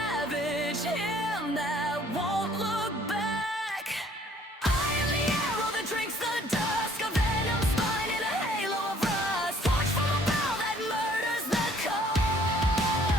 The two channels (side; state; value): both; normal; correlation 0.59